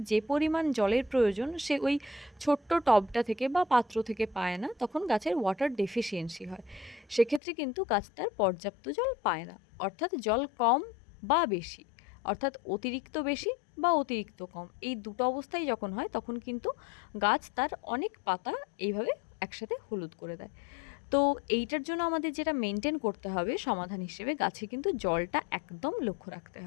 যে পরিমাণ জলের প্রয়োজন সে ওই ছোট্ট টবটা থেকে বা পাত্র থেকে পায় না, তখন গাছের ওয়াটার ডেফিসিয়েন্সি হয়। সেক্ষেত্রে কিন্তু গাছ তার পর্যাপ্ত জল পায় না, অর্থাৎ জল কম বা বেশি, অর্থাৎ অতিরিক্ত বেশি বা অতিরিক্ত কম, এই দুটো অবস্থায় যখন হয় তখন কিন্তু গাছ তার অনেক পাতা এইভাবে একসাথে হলুদ করে দেয়। তো এইটার জন্য আমাদের যেটা মেনটেন করতে হবে সমাধান হিসেবে, গাছে কিন্তু জলটা একদম লক্ষ্য রাখতে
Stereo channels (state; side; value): drops out; right; at 7.4 s